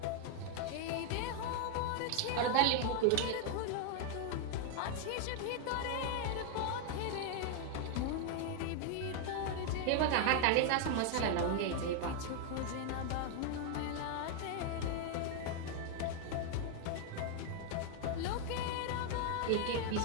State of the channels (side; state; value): both; different; correlation 0.00